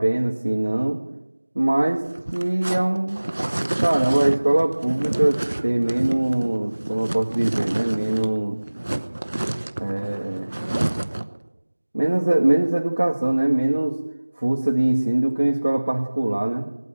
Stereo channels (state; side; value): inverted; both; correlation -1.00